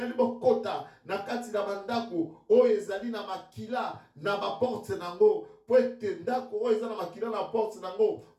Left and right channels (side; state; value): both; identical; correlation 1.00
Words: nous kota na kati na mandako. O ezali na makila na ma porte nango. Po ete ndako o ezali na makila na porte nango.